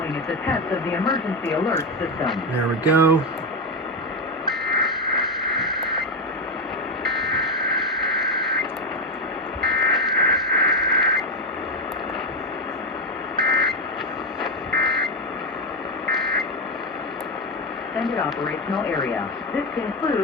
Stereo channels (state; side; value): normal; both; correlation 0.10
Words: is a test of the emergency alert system. There we go. Extended operational area. This